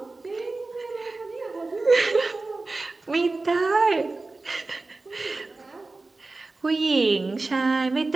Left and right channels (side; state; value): left; quieter; 3.4 dB